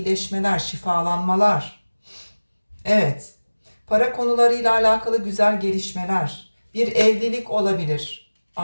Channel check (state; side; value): inverted; both; correlation -1.00